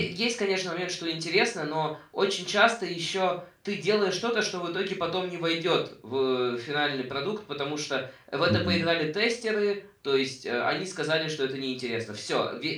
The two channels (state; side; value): identical; both; correlation 1.00